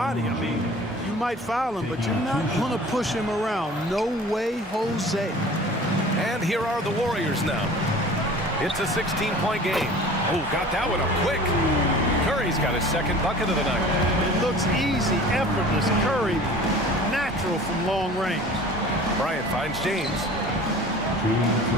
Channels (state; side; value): normal; both; correlation 0.43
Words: I mean, you might foul him, but you're not going to push him around. No way, Jose. And here are the Warriors now. It's a 16-point game. Oh, got that one up quick. Curry's got his second bucket of the night. It looks easy, effortless. Curry, natural from long range. Bryant finds James. 2 minutes